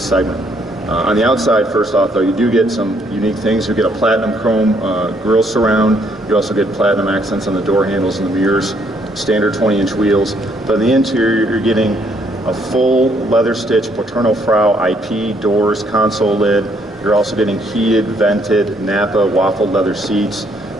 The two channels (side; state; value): both; normal; correlation 0.69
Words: segment. On the outside, first off, though, you do get some unique things. You get a platinum chrome grille surround. You also get platinum accents on the door handles and the mirrors, standard 20-inch wheels. But in the interior, you're getting a full leather stitch Paterno Frau IP doors, console lid. You're also getting heated, vented Napa waffled leather seats,